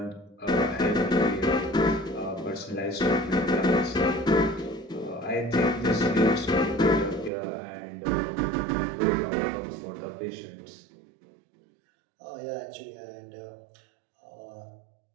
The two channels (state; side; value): drops out; left; at 7.3 s